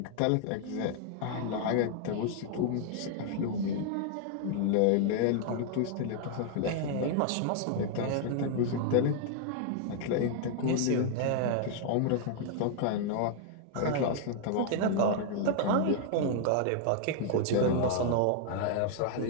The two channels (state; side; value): different; both; correlation 0.00